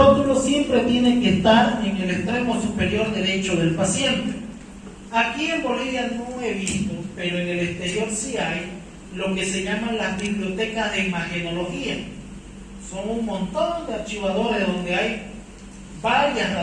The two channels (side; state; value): both; identical; correlation 1.00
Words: siempre tiene que estar en el extremo superior derecho del paciente. Aquí en Bolivia no he visto, pero en el exterior sí hay lo que se llaman las bibliotecas de imagenología. Son un montón de archivadores donde hay varias